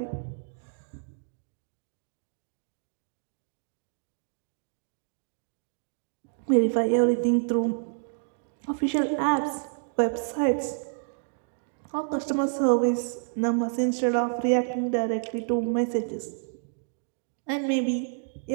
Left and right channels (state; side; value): silent; left; digital silence